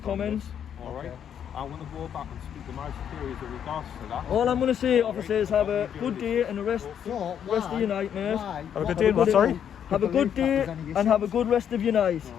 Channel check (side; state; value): right; quieter; 8.8 dB